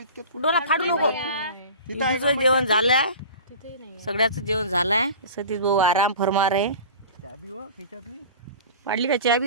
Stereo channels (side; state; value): both; inverted; correlation -0.37